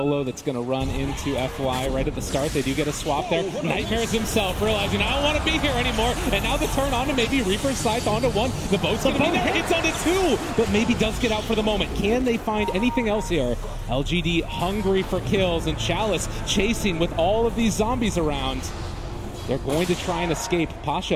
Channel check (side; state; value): both; identical; correlation 1.00